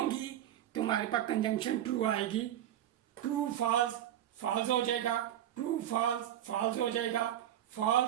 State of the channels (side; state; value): left; quieter; 11.7 dB